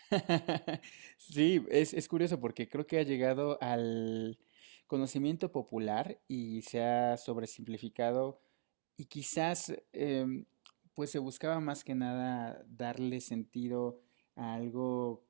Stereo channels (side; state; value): left; silent; digital silence